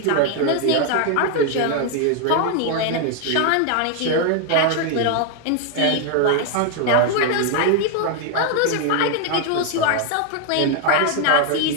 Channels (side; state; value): both; different; correlation 0.00